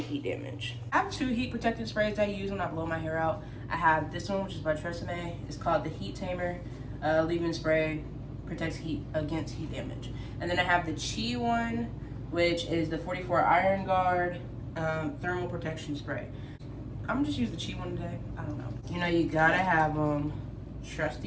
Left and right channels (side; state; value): both; identical; correlation 1.00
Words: heat damage. I have two heat protectant sprays I use when I blow my hair out. I have this one, which is by TRESemmé. It's called the Heat Tamer leave-in spray. Protects heat against heat damage. And then I have the Chi one, which is the 44 Iron Guard thermal protection spray. I'm gonna just use the Chi one today. I don't know. You know, you gotta have